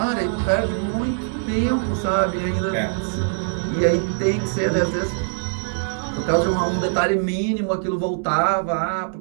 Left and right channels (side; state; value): left; silent; digital silence